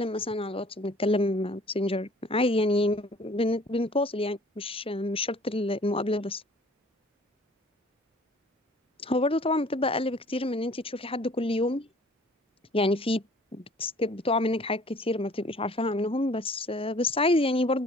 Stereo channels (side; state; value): both; normal; correlation 0.52